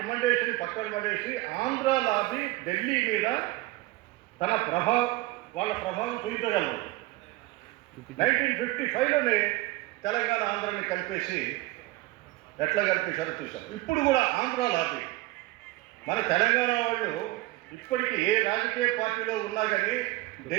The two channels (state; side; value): quieter; left; 19.5 dB